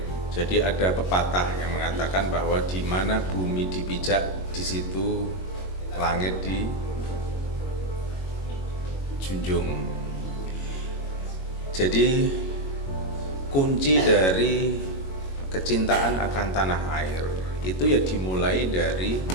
Jadi ada pepatah yang mengatakan bahwa di mana bumi dipijak, di situ langit dijunjung. Jadi kunci dari kecintaan akan tanah air itu ya dimulai dari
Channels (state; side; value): late; right; 22 ms